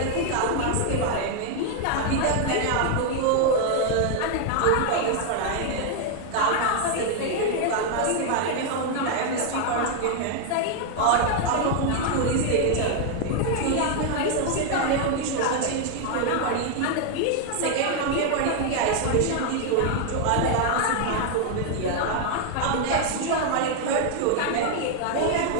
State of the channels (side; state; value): both; different; correlation 0.00